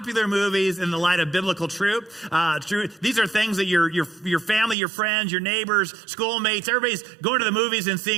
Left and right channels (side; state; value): left; drops out; at 4.8 s